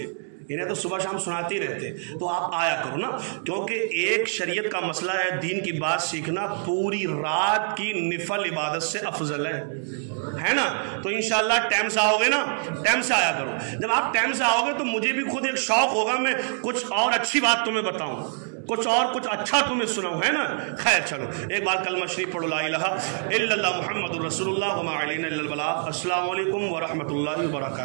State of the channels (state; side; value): silent; left; digital silence